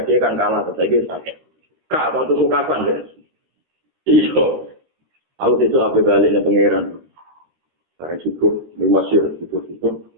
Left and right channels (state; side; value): late; left; 23 ms